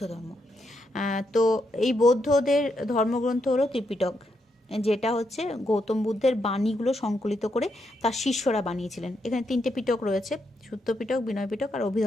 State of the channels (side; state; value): both; normal; correlation 0.80